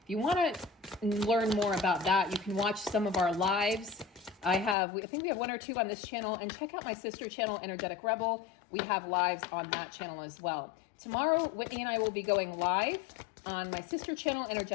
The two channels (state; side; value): drops out; right; at 4.8 s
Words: If you want to learn more about that, you can watch some of our lives. I think we have 1 or 2 on this channel, and check out my sister channel, Energetic Rebel. We have lives on that channel as well. Tomorrow, Whitney and I will be going live on my sister channel,